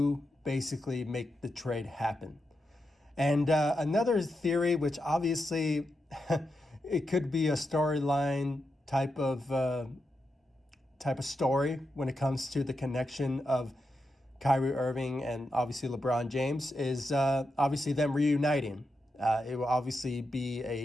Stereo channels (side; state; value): both; normal; correlation 0.86